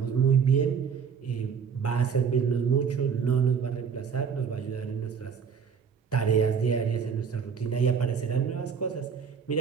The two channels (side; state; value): left; quieter; 6.6 dB